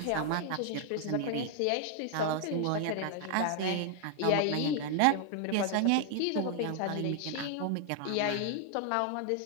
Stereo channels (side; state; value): both; different; correlation 0.00